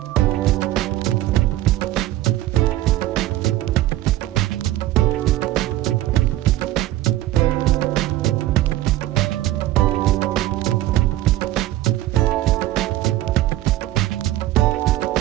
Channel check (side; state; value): left; quieter; 15.1 dB